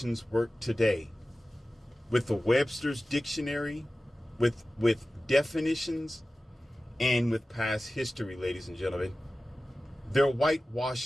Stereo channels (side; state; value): both; normal; correlation 0.95